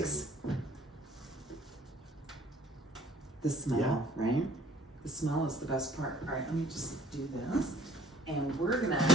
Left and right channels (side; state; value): both; normal; correlation 0.55